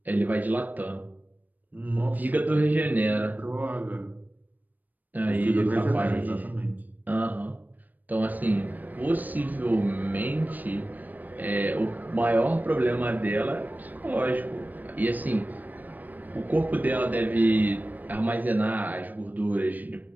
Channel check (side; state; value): left; late; 0.084 ms